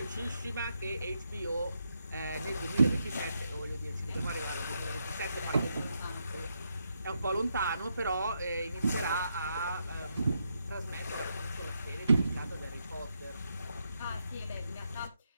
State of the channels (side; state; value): both; inverted; correlation -0.81